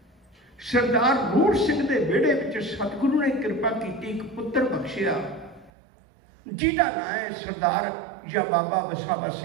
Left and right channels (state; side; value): drops out; left; at 5.7 s